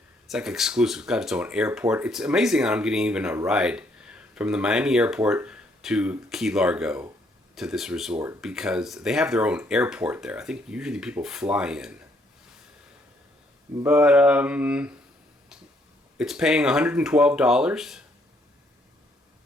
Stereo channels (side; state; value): both; normal; correlation 0.69